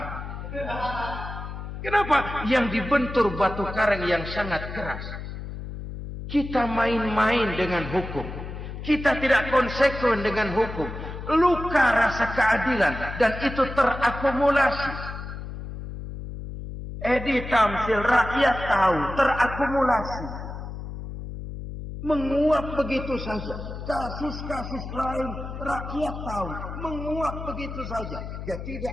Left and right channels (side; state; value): left; noise; hum, 9 dB below the sound